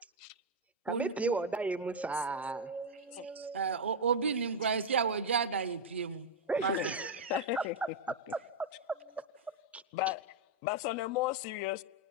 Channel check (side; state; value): both; normal; correlation 0.02